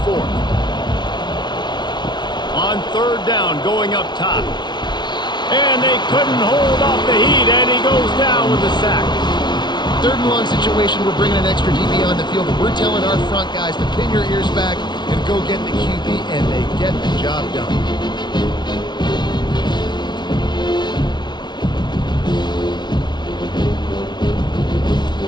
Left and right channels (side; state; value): right; late; 0.21 ms